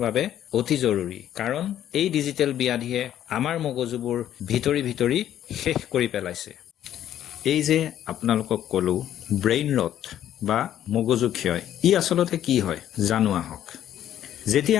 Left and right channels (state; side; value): quieter; right; 11.3 dB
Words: বাবে অতি জৰুৰী কাৰণ এই ডিজিটেল ব্যাধিয়ে আমাৰ মগজুবোৰ ভিতৰি শেষ কৰি পেলাইছে এই যে আপোনালোকক ক'লো ব্ৰেইন ৰট বা মগজু ক্ষয় ই আচলতে কি হয় জানো আহক যেতিয়া